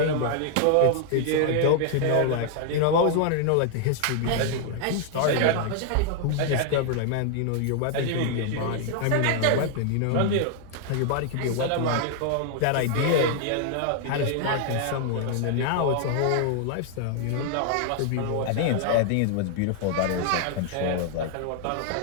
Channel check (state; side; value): different; both; correlation 0.00